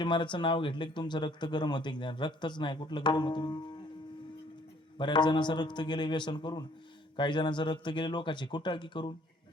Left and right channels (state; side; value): normal; both; correlation 0.60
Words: महाराजचं नाव घेतलं की तुमचं रक्त गरम होते. रक्तच नाही, कुठलं गरम होतं? बऱ्याच जणांचं रक्त गेले व्यसन करून, काही जणांचं रक्त गेले लोकांची कुटाळकी करून.